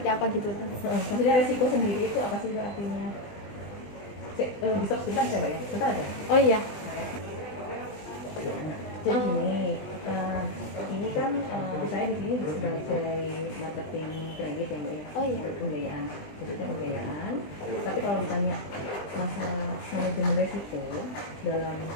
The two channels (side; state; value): right; late; 20 ms